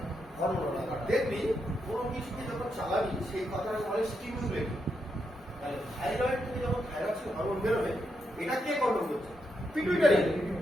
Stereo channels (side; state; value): both; normal; correlation 0.82